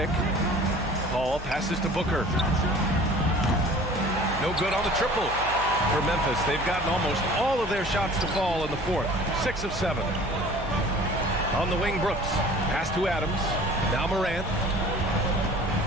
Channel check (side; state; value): right; noise; hum, 11 dB below the sound